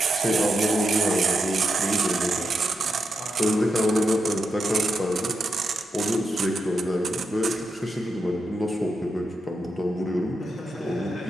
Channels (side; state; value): both; normal; correlation 0.85